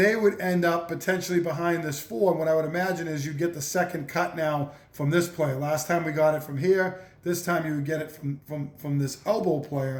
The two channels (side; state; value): both; identical; correlation 1.00